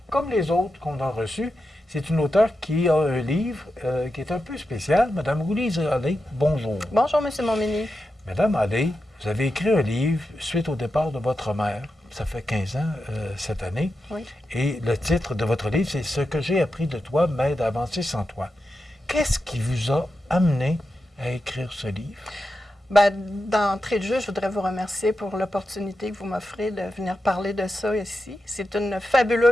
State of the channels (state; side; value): normal; both; correlation 0.89